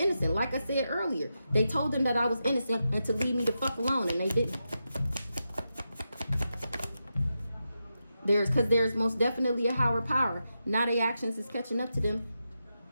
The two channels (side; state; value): both; inverted; correlation -0.88